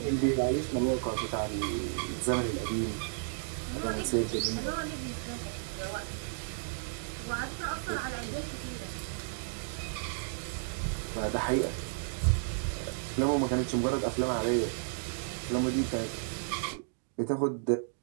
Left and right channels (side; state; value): left; silent; digital silence